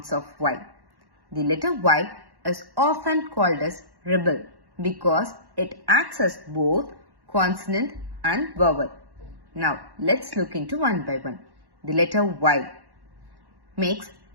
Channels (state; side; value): late; left; 1.1 ms